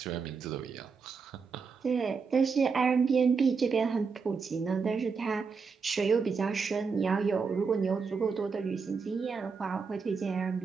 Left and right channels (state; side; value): quieter; left; 5.2 dB